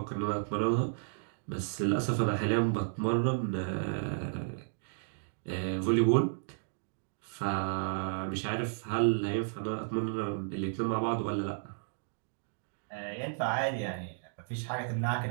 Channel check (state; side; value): silent; left; digital silence